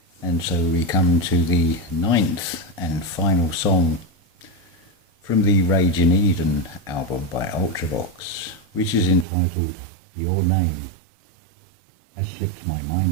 And so we come to the 9th and final song from the Rage in Eden album by Ultravox, which is entitled Your Name Has Slipped My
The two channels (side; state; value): left; drops out; at 9.2 s